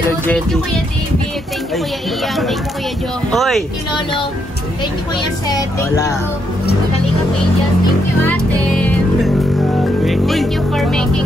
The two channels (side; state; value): both; normal; correlation 0.77